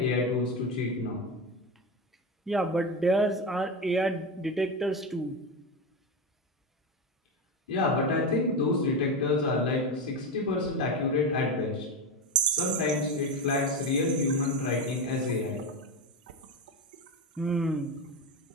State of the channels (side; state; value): both; normal; correlation 0.17